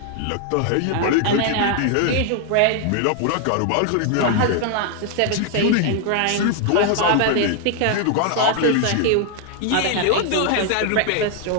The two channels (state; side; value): different; both; correlation 0.00